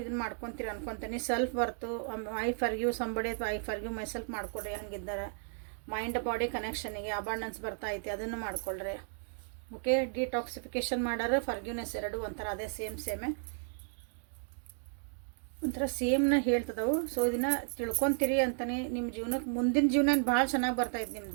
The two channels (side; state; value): left; silent; digital silence